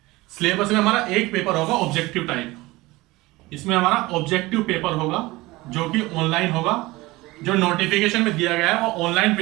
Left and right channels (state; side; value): quieter; left; 20.6 dB